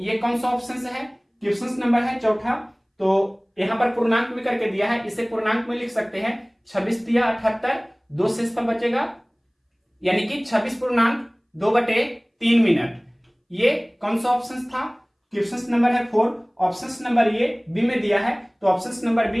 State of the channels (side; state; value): both; identical; correlation 1.00